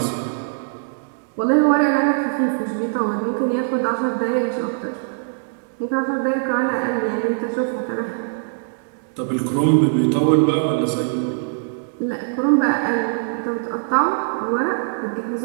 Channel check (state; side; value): silent; left; digital silence